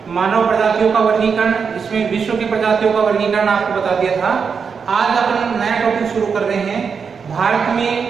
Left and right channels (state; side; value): quieter; left; 6.0 dB